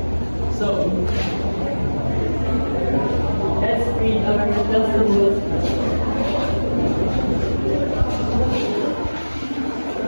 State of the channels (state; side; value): inverted; both; correlation -1.00